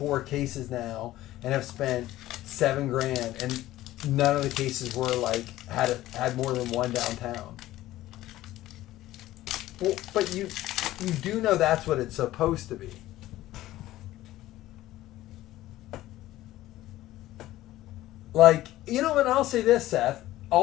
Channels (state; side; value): quieter; right; 15.5 dB